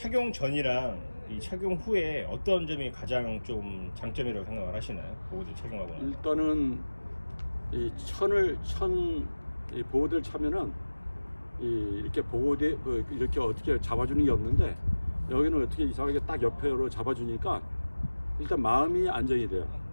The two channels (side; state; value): both; inverted; correlation -1.00